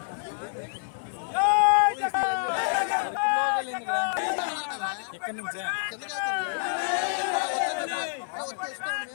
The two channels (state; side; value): silent; right; digital silence